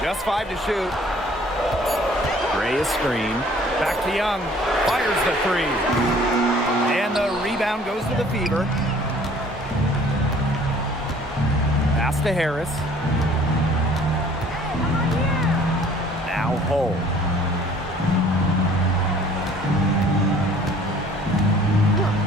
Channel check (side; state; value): both; normal; correlation 0.54